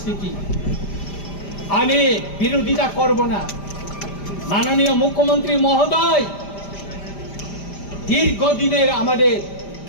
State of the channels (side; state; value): right; late; 5.0 ms